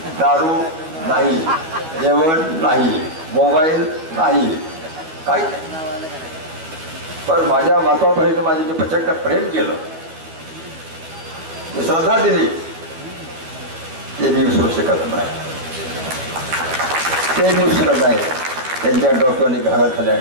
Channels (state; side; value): late; left; 12 ms